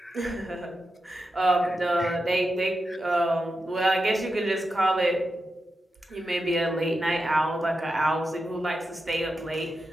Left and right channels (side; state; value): both; normal; correlation 0.89